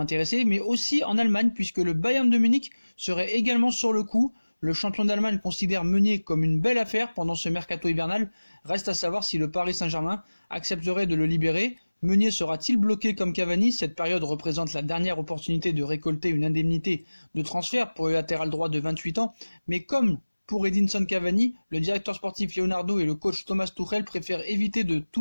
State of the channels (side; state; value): both; inverted; correlation -1.00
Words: mais aussi en Allemagne puisque le Bayern de Munich serait également sur le coup. Le champion d'Allemagne considère Meunier comme une belle affaire pendant ce mercato hivernal. Reste à savoir si le Paris Saint-Germain accepterait de le libérer. Meunier sera-t-il bloqué comme Cavani? Cette période représente la dernière opportunité de récolter une indemnité de transfert pour le latéral droit de 28 ans. Mais comme Pour Edinson Cavani, le directeur sportif Leonardo et le coach Thomas Tuchel préfèrent éviter de